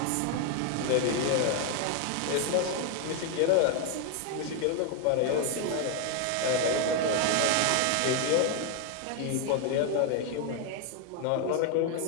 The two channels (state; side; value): different; both; correlation 0.01